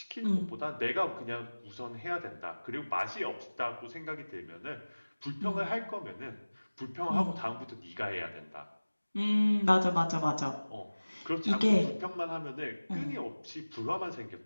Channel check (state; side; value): inverted; both; correlation -1.00